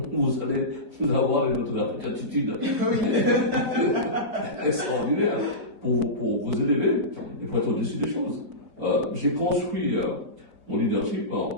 allez avoir une autre attitude extraordinaire pour vous élever et pour être au-dessus des choses. J'ai construit mon leadership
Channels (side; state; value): left; late; 4.7 ms